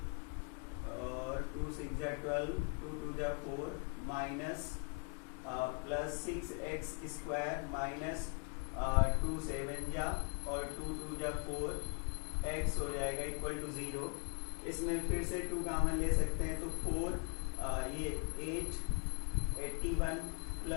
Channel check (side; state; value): right; quieter; 37.5 dB